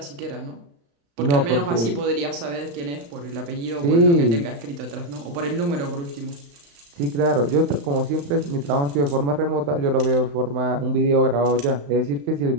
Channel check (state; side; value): late; left; 35 ms